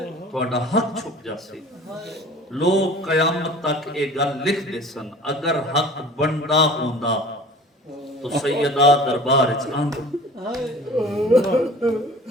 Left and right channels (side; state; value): both; normal; correlation 0.43